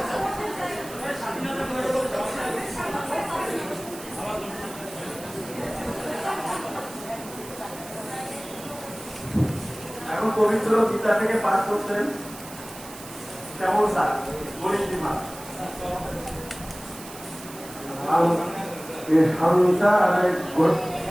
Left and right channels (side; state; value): right; noise; hiss, 15 dB below the sound